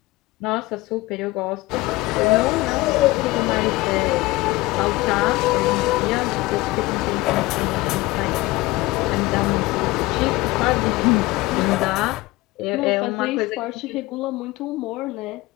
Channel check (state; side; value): quieter; right; 20.1 dB